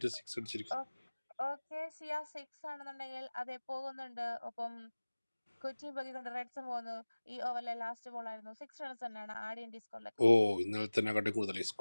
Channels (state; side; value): inverted; both; correlation -1.00